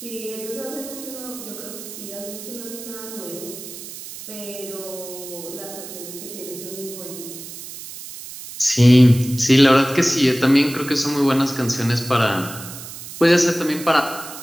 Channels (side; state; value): right; noise; hiss, 12 dB below the sound